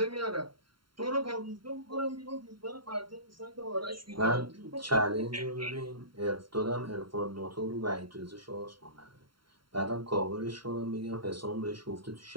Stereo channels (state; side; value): late; left; 0.73 ms